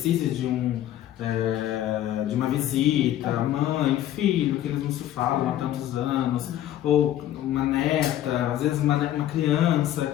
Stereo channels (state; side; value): quieter; right; 12.5 dB